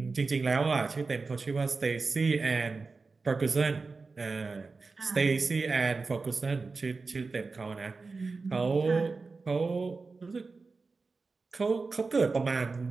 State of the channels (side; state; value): left; quieter; 4.1 dB